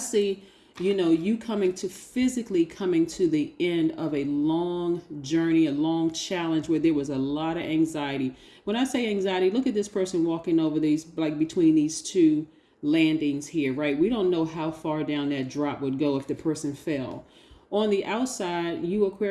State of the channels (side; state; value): both; identical; correlation 1.00